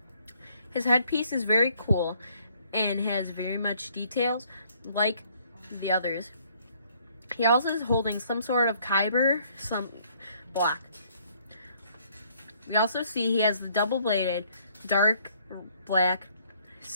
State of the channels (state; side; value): inverted; both; correlation -0.64